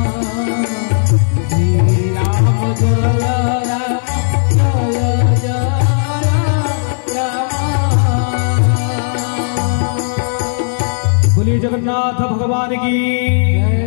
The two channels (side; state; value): right; silent; digital silence